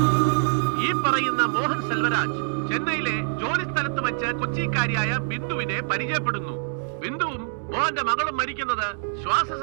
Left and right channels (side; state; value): left; silent; digital silence